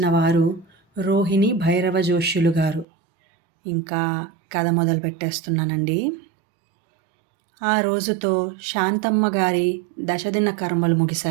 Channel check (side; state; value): left; drops out; at 2.9 s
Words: వారు రోహిణి భైరవ జోష్యులు గారు. ఇంకా కథ మొదలుపెట్టేస్తున్నానండి. ఆ రోజుతో శాంతమ్మ గారి దశదిన కర్మలు